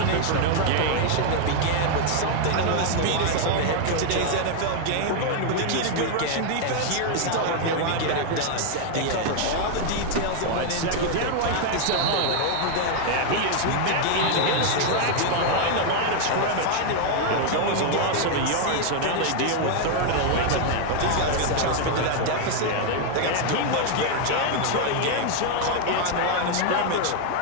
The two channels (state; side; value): different; both; correlation 0.00